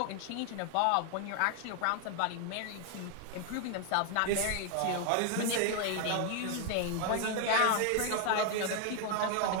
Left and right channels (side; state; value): both; different; correlation 0.00